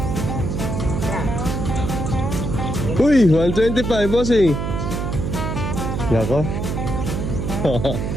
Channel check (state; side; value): noise; right; hum, 2 dB below the sound